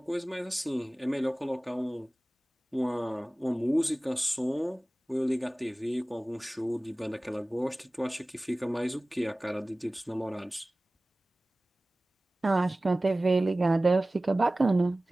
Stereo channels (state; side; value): normal; both; correlation 0.98